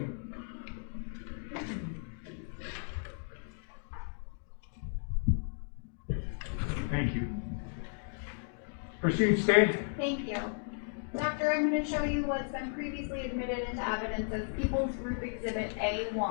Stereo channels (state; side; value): silent; right; 55 dB below the other